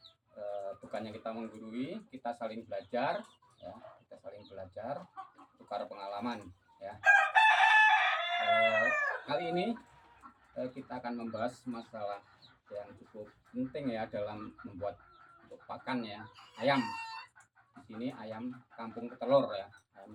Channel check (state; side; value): identical; both; correlation 1.00